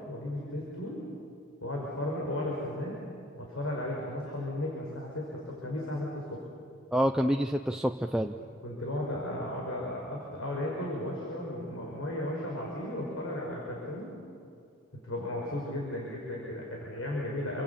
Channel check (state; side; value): normal; both; correlation 0.55